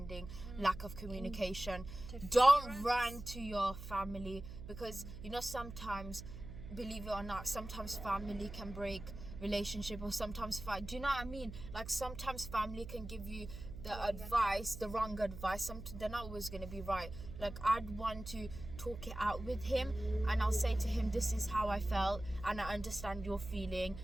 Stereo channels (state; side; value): noise; right; hum, 11 dB below the sound